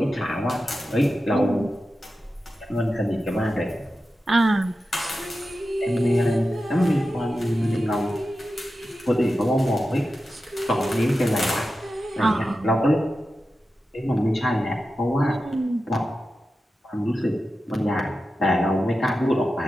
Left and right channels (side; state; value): both; normal; correlation 0.92